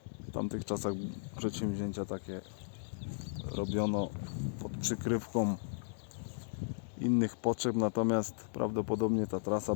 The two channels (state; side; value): silent; right; digital silence